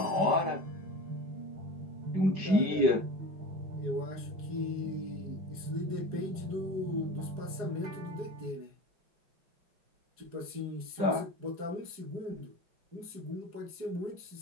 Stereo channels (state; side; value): late; left; 5.2 ms